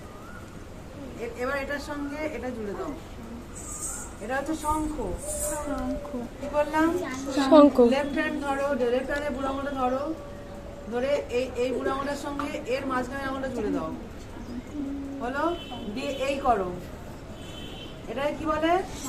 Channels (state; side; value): identical; both; correlation 1.00